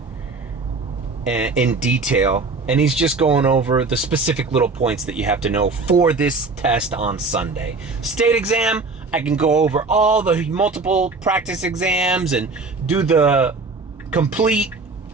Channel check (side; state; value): left; quieter; 3.9 dB